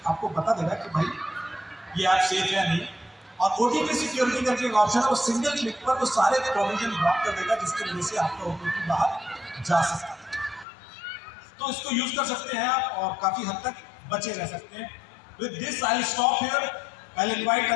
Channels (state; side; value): drops out; right; at 10.7 s